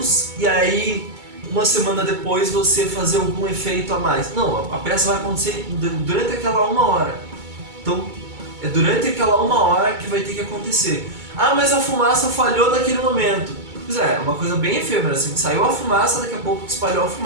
e aí uma semana depois você fazer algum efeito a mais. Não, a peça vai acontecer durante aquela 1 hora. Então, é durante aquela 1 hora que vai ter que acontecer. Ah, mas a fumaça falhou naquele momento. Pois é uma coisa bem efêmera, assim, saiu a fumaça, daqui a pouco espalhou a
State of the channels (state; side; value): late; left; 2.2 ms